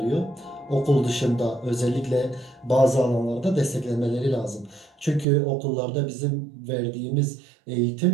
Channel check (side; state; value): left; drops out; at 5.2 s